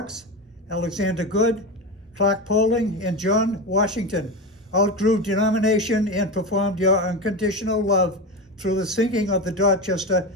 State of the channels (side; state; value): both; normal; correlation 0.20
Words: Alexander Good, Clark Poling, and John Washington. Outgrew denomination and performed your unconditional love through the sinking of the Dorchester